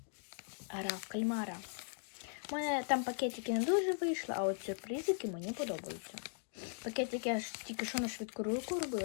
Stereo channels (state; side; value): silent; right; 52 dB below the other